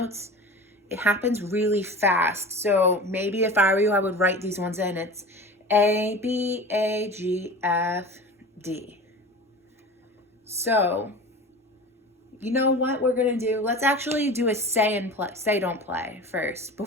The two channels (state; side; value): normal; both; correlation 0.35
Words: It happens really fast. So maybe if I were you, I would write these ones in. It's A, B, A, G, F, D. So, you know what we're going to do? Let's actually do a say don't play first